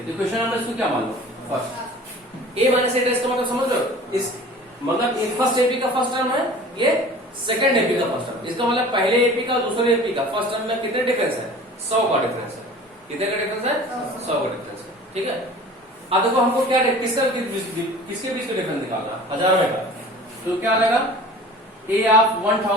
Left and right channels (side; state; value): both; normal; correlation 0.43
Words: तो क्वेश्चन नंबर इसको क्या मान लो? First A minus A dash का मतलब समझ लो, इस मतलब फर्स्ट एपी का फर्स्ट टर्म है, ये सेकंड एपी का फर्स्ट टर्म। इसका मतलब पहले एपी का दूसरे एपी का फर्स्ट टर्म में कितने डिफरेंस है? 100 का डिफरेंस है। कितने का डिफरेंस है? 100 का डिफरेंस है, ठीक है। अब देखो हमको क्या किसके बीच का डिफरेंस निकालना? हजारों का। तो क्या आएगा? A of